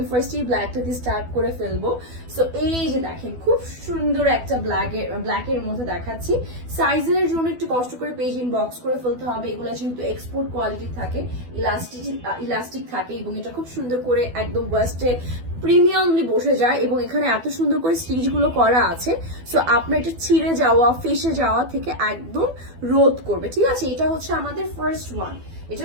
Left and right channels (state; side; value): late; left; 12 ms